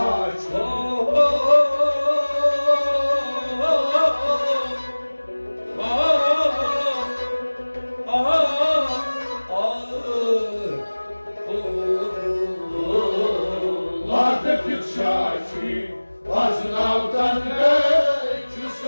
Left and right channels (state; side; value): inverted; both; correlation -1.00